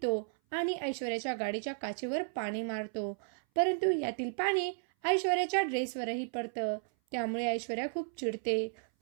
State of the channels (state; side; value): silent; left; 55 dB below the other